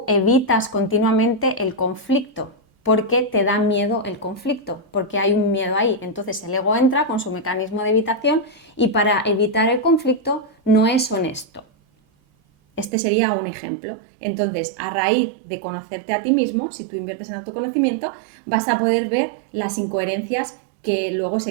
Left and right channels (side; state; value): left; drops out; at 12.9 s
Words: evitas continuamente el conflicto porque te da miedo el conflicto, porque hay un miedo ahí. Entonces el ego entra con su mecanismo de evitación y para evitar el conflicto no es honesto. Este sería un ejemplo. Entonces, a raíz de conocerte a ti mismo, si tú inviertes en autoconocimiento, vas a poder ver las incoherencias que luego